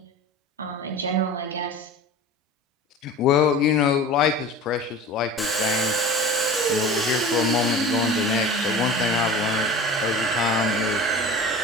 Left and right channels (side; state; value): both; normal; correlation 0.37